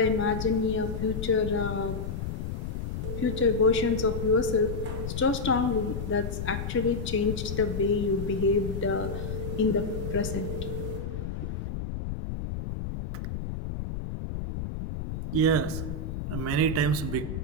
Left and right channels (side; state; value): left; noise; rumble, 5 dB below the sound